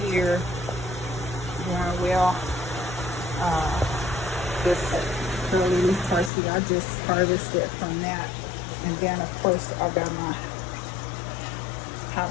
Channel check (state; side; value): drops out; right; at 6.3 s